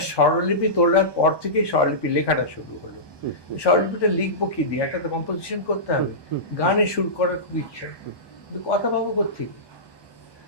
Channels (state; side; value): late; right; 1.2 ms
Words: স্বরলিপি তোলার পর থেকেই স্বরলিপি লেখাটা শুরু হলো। স্বরলিপিটা লিখবো কি দিয়ে, একটা তো কম্পোজিশন করতে হবে। গানে সুর করার খুব ইচ্ছা, কিন্তু কথা পাবো কোত্থেকে?